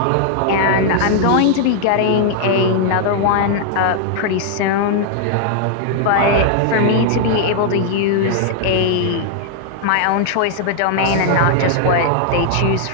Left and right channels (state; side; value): different; both; correlation 0.00